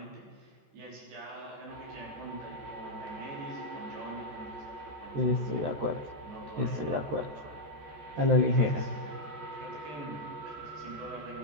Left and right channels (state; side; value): late; left; 13 ms